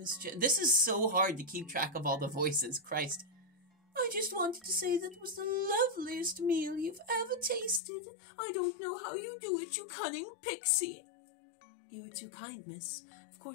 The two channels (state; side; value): drops out; right; at 7.8 s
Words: This is so hard to keep track of all the voices, Christ. I just wanted to say that was the loveliest meal you've ever tasted. I don't know how you do it, you cunning pixie. You are too kind, miss. Of